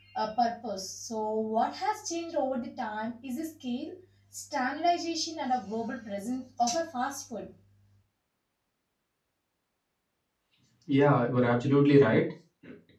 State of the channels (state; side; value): identical; both; correlation 1.00